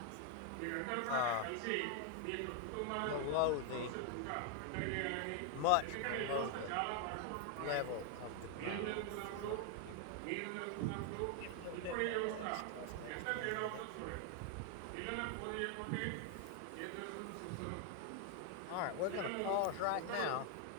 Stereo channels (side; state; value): both; different; correlation 0.00